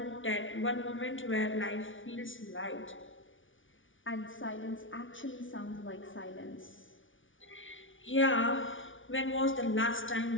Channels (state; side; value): late; right; 0.57 ms